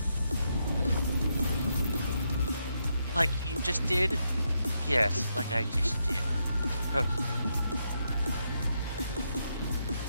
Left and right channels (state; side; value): inverted; both; correlation -0.81